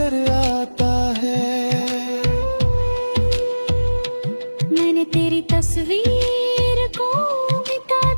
आता है। मैंने तेरी तस्वीर को मिटा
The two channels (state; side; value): inverted; both; correlation -1.00